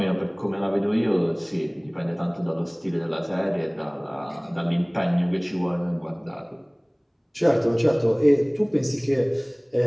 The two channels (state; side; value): identical; both; correlation 1.00